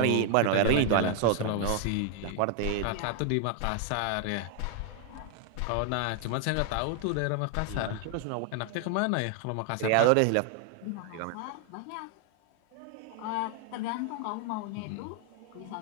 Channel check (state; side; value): different; both; correlation 0.00